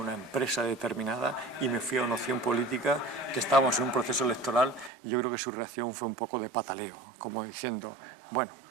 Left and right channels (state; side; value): drops out; left; at 4.9 s